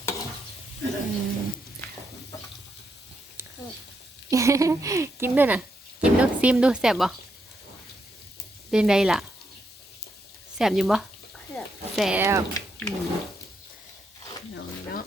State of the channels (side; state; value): both; normal; correlation 0.80